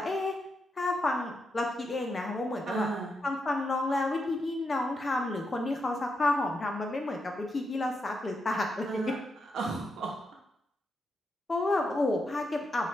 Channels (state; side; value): normal; both; correlation 0.83